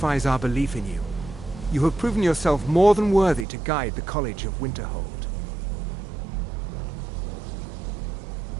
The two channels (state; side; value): drops out; left; at 3.5 s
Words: our belief in you. You have proven yourself more than worthy to guide the College of Winterhold.